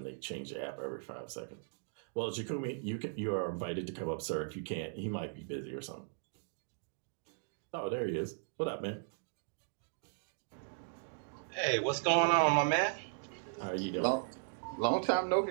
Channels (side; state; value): left; silent; digital silence